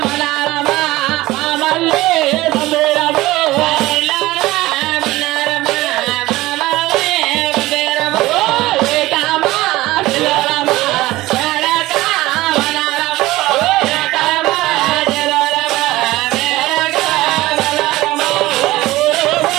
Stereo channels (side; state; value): left; quieter; 18.1 dB